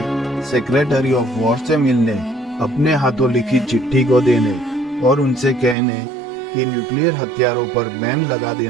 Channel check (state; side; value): drops out; left; at 5.8 s